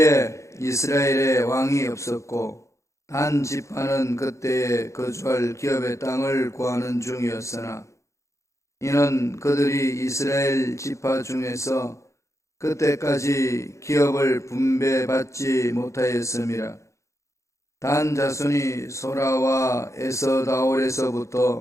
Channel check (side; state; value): right; late; 0.14 ms